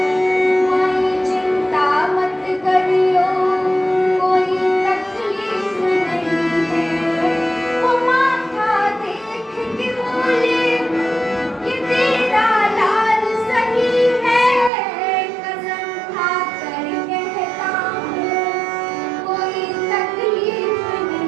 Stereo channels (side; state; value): left; drops out; at 14.7 s